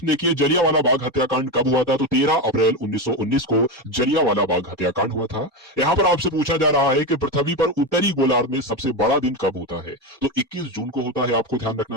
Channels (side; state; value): both; normal; correlation 0.15